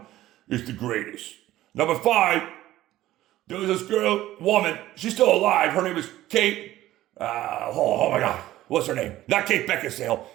is the greatest. Number 5, there was this woman, she's still alive. Her name is Kate, oh my God, what's her name? Not Kate Beckinsale,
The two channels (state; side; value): quieter; left; 14.9 dB